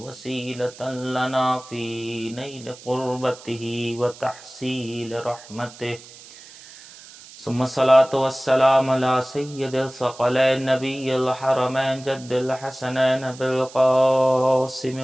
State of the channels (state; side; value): noise; right; hiss, 19 dB below the sound